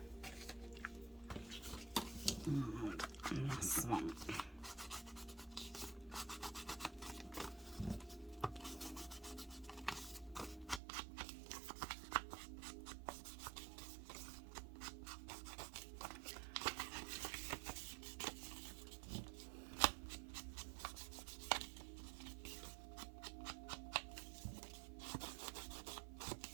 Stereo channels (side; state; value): left; drops out; at 10.8 s